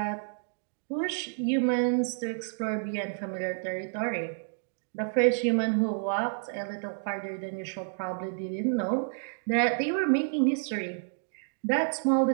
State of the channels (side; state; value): left; silent; digital silence